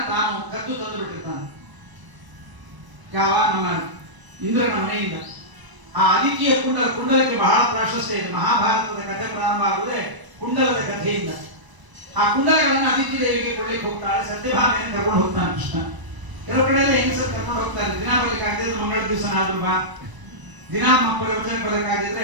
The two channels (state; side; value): late; left; 1.0 ms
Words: ತಾನು ಕದ್ದು ತಂದು ಬಿಟ್ಟಿರ್ತಾನೆ. ಯಾವ ನಮ್ಮ ಇಂದ್ರನ ಮನೆಯಿಂದ. ಆ ಅದಿತಿಯ ಕುಂಡಲಕ್ಕೆ ಬಹಳ ಪ್ರಾಶಸ್ತ್ಯ ಇದೆ. ಮಹಾಭಾರತದ ಕಥೆ ಪ್ರಾರಂಭ ಆಗುವುದೇ ಕುಂಡಲದ ಕಥೆಯಿಂದ. ಆ ಕುಂಡಲಗಳನ್ನು ಅದಿತಿ ದೇವಿಗೆ ಕೊಳ್ಳಿಕ್ಕೆ ಹೋಗ್ತಾಳೆ. ಸತ್ಯಭಾಮೆಯನ್ನು ಕರ್ಕೊಂಡು ಹೋಗ್ತಾನೆ ಕೃಷ್ಣ. ಕೆಲವು ಕಡೆ ಎಲ್ಲ ಹೆಂಗಸರು ಕರ್ಕೊಂಡು ಹೋಗ್ತಾರೆ. ದಿನ ಬರ್ಲಿಕ್ಕೆ ಆಗದಿದ್ರೆ ಮಂಗಳ ದಿವಸನಾದ್ರೂ ಬಾ, ದಿನ ಪ್ರವಚನ ಬರ್ಲಿಕ್ಕಾಗಿದ್ರೆ